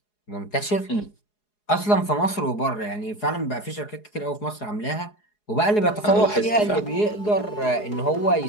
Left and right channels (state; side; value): late; right; 4.8 ms